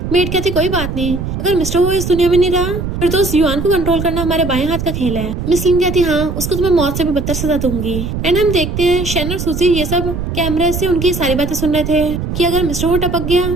मेड कहती कोई बात नहीं, अगर मिस्टर वो इस दुनिया में नहीं रहा फिर तो उस युआन को कंट्रोल करना हमारे बाएं हाथ का खेल है। मिसलिन कहती हाँ उसको तो मैं मौत से भी बदतर सजा दूंगी। एंड हम देखते हैं शैन और सूजी ये सब कैमरे से उनकी सारी बातें सुन रहे थे कि अगर मिस्टर वो टपक गया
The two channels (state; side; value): noise; right; rumble, 5 dB below the sound